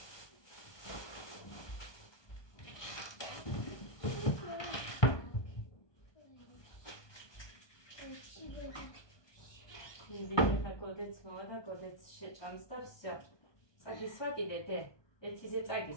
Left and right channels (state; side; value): late; right; 1.2 ms